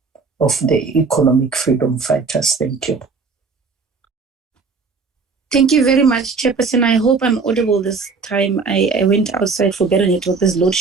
of the Economic Freedom Fighters. Thank you. Thank you very much, Chairperson. I hope I'm audible this time. I went outside for better network. There's load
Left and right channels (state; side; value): quieter; left; 4.7 dB